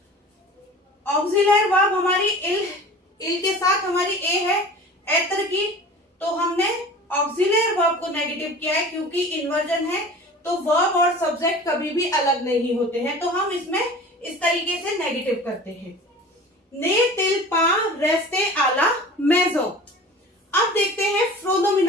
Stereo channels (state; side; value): normal; both; correlation 0.40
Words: ऑक्सिलरी वर्ब हमारी इल के साथ हमारी ए है एत्र की, तो हमने ऑक्सिलरी वर्ब को नेगेटिव किया है क्योंकि इन्वर्जन है, तो वर्ब और सब्जेक्ट कभी भी अलग नहीं होते हैं, तो हम इसमें इस तरीके से नेगेटिव करते हैं। ने तिल पा रेस्ते आला मेजो। अब देखते हैं